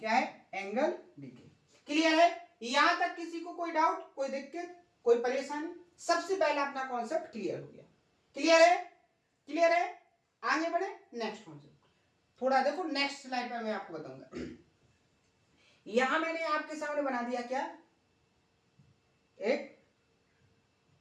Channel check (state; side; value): identical; both; correlation 1.00